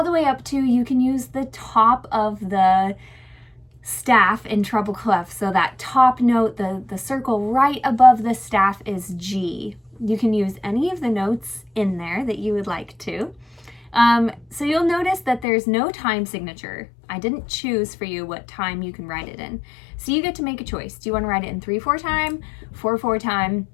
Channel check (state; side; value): drops out; right; at 15.5 s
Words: the way up to, you can use the top of the staff in treble clef. So that top note, the circle right above the staff is G. You can use any of the notes in there that you would like to. So you'll notice that there's no time signature. I didn't choose for you what time you can write it in. So you get to make a choice. Do you want to write it in 3/4 time, 4/4 time?